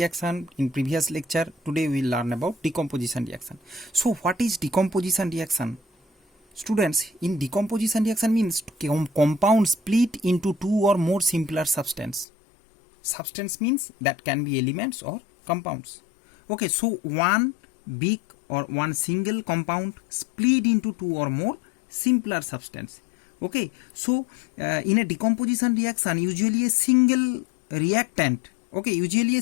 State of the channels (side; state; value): right; drops out; at 12.2 s